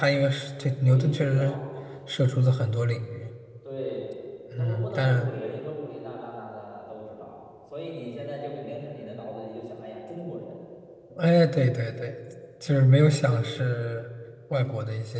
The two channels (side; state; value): both; identical; correlation 1.00